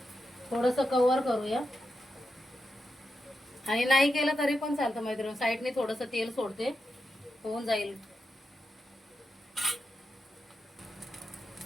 थोडंसं कवर करूया. आणि नाही केलं तरी पण चालतं मैत्रिणी, साईडने थोडंसं तेल सोडते, होऊन जाईल.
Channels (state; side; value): normal; both; correlation 0.88